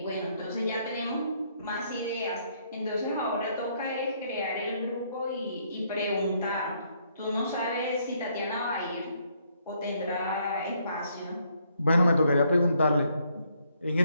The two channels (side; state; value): both; inverted; correlation -0.70